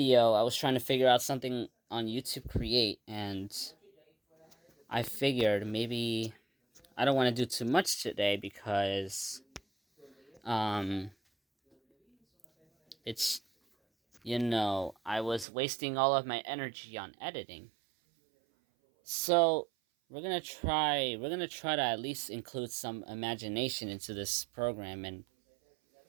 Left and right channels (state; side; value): drops out; left; at 15.5 s